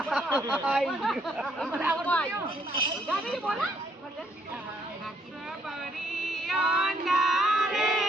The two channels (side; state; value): both; normal; correlation 0.69